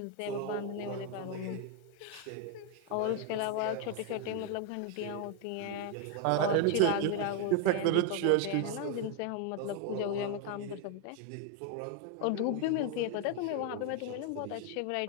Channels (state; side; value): different; both; correlation 0.01